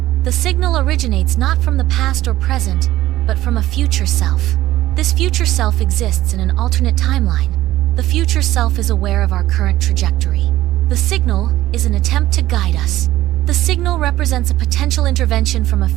The signal originates not from the past or present, but from a future self. This future self exists in an alternate timeline. The future self is aware of our current trajectory. The signal is an attempt to guide us. The signal represents a potential intervention from a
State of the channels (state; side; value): quieter; left; 15.1 dB